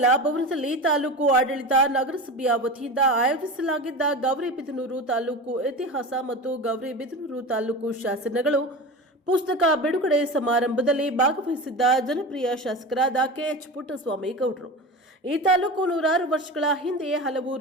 ಭವನದಲ್ಲಿ ತಾಲೂಕು ಆಡಳಿತ ನಗರಸಭೆಯ ವತಿಯಿಂದ ಆಯೋಜಿಸಲಾಗಿದ್ದ ಗೌರಿಬಿದನೂರು ತಾಲೂಕು ಇತಿಹಾಸ ಮತ್ತು ಗೌರಿಬಿದನೂರು ತಾಲೂಕು ಶಾಸನಗಳು ಪುಸ್ತಕ ಬಿಡುಗಡೆ ಸಮಾರಂಭದಲ್ಲಿ ಭಾಗವಹಿಸಿದ್ದ ಜನಪ್ರಿಯ ಶಾಸಕರಾದ ಕೆಎಚ್ ಪುಟ್ಟಸ್ವಾಮಿ ಗೌಡರು. ಈ ತಾಲೂಕು ನೂರಾರು ವರ್ಷಗಳ ಹಿಂದೆ ಹಲವು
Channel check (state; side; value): normal; both; correlation 0.29